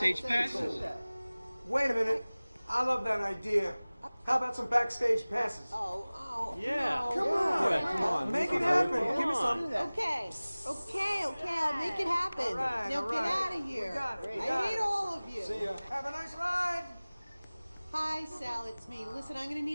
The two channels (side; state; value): both; inverted; correlation -0.99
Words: passes? Wait a minute. I love that idea. How about some backstage passes? Yeah. No. Come on. Yeah, come on. Make it Come happen. on. Give me some. Okay, I'll make it happen. All right, now all get right. out of here. We got it. I hate all of you. See ya. Have a nice ride. Hi, Sal, it's me. Listen, I'm gonna